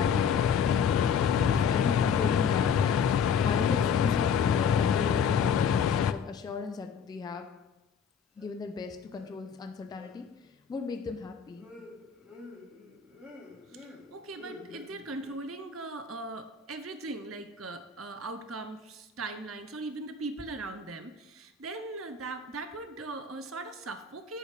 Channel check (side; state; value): right; quieter; 6.6 dB